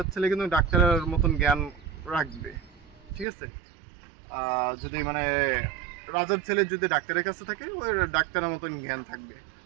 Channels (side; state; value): left; drops out; at 3.2 s